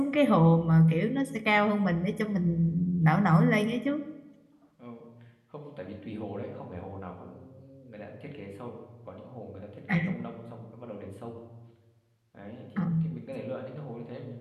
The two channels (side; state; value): both; identical; correlation 1.00